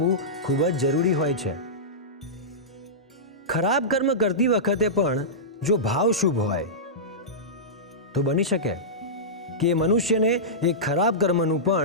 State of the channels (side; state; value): both; normal; correlation -0.16